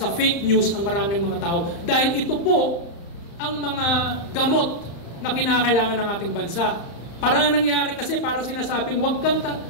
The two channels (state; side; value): late; right; 35 ms